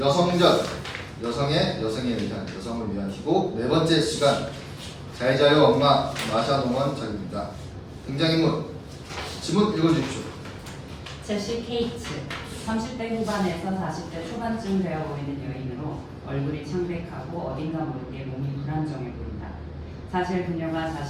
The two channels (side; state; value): both; identical; correlation 1.00